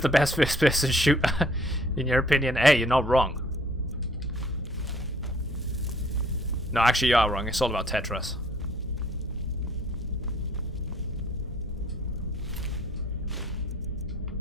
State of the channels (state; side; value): normal; both; correlation 0.59